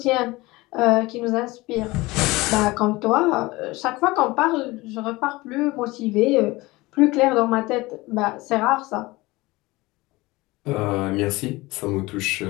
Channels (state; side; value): quieter; right; 21.1 dB